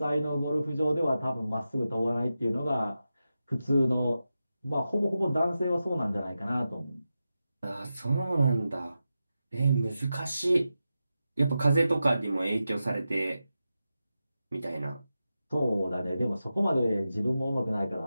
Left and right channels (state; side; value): inverted; both; correlation -0.91